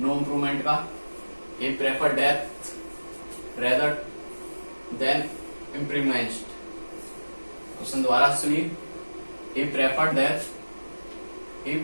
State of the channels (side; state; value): both; inverted; correlation -1.00